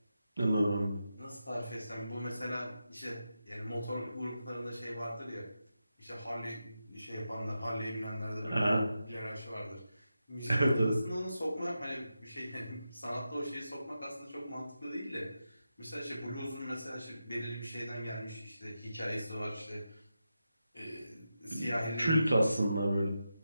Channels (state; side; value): inverted; both; correlation -0.89